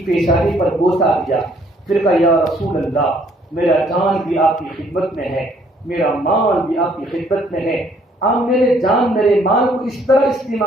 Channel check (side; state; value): both; normal; correlation 0.64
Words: پیشانی پر بوسہ دیا۔ پھر کہا یا رسول اللہ، میرا جان بھی آپ کی خدمت میں ہے، میرا مال بھی آپ کی خدمت میں ہے، آپ میرے جان میرے مال کو اس طرح